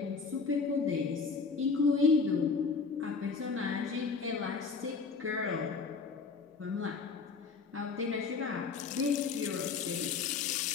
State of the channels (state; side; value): quieter; right; 4.8 dB